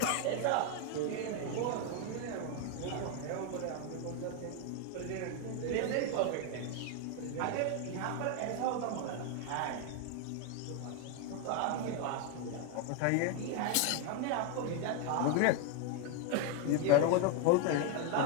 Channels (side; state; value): both; different; correlation 0.01